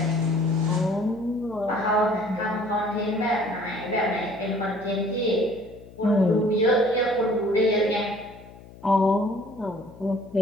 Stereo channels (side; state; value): left; noise; hum, 20 dB below the sound